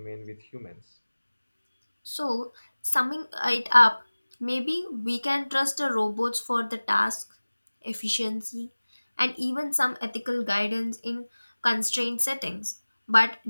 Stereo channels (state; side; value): inverted; both; correlation -1.00